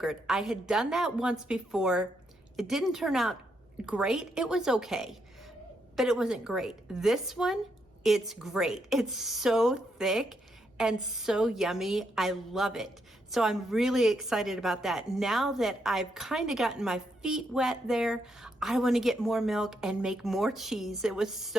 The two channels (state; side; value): normal; both; correlation 0.78